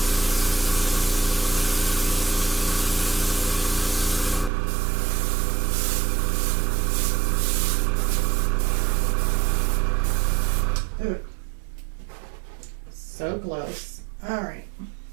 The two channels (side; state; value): left; drops out; at 4.5 s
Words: Ooh. So close. All right.